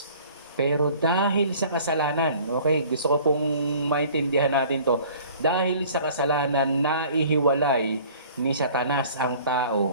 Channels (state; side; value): inverted; both; correlation -0.50